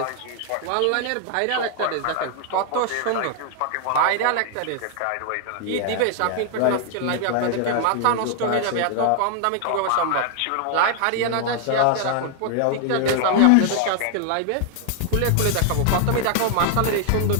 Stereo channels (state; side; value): different; both; correlation 0.00